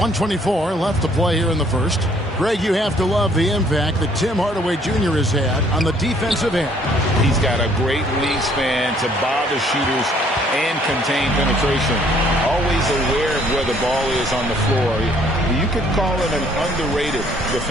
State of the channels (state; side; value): normal; both; correlation 0.62